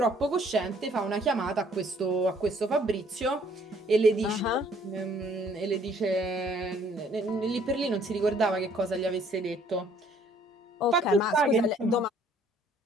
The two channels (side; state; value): both; normal; correlation 0.61